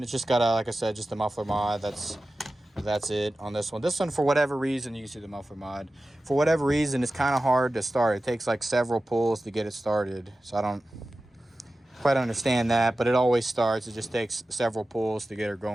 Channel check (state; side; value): normal; both; correlation 0.95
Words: It's just got a, like I said, just a muffler mod. That's it on this one. This one, for whatever reason, you can see the muffler mod. For whatever reason, it's kind of hard to start. It takes like several pulls to get it started. So I don't quite understand that, but it always starts. It just takes several pulls to get her